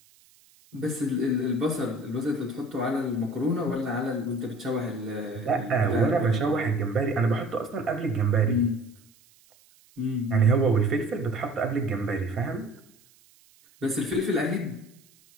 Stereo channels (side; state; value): right; noise; hiss, 30 dB below the sound